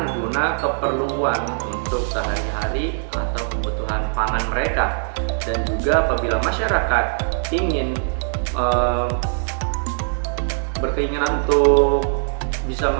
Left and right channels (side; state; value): left; silent; digital silence